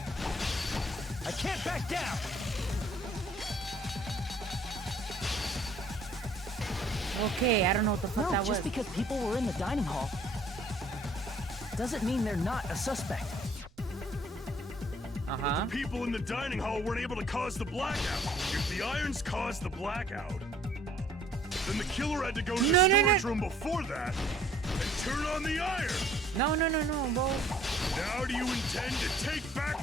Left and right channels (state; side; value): normal; both; correlation 0.59